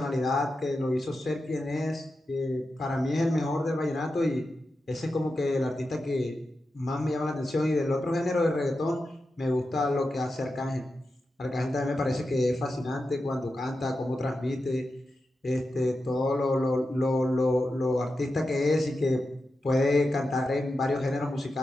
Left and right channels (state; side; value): normal; both; correlation 0.90